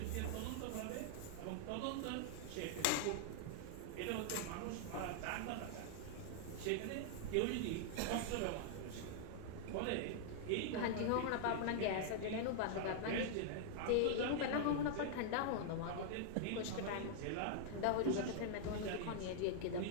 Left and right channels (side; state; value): both; different; correlation -0.01